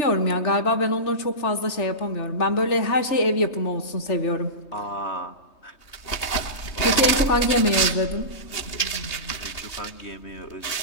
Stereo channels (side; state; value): right; late; 3.2 ms